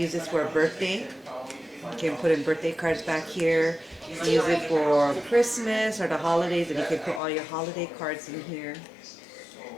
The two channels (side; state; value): right; drops out; at 7.2 s